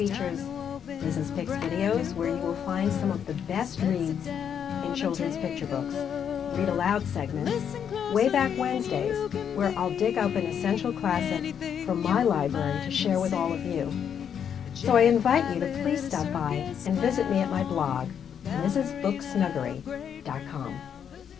Liz's Picks videos where you will find some of the best reads in children's picture books, read aloud segments, Way Back Wednesdays, where I'll dig up an essential classic from my library to share with all of you. So I invite you to please stop by and visit me at my blog, lizsbooksnuggery.com.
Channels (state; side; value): quieter; right; 8.2 dB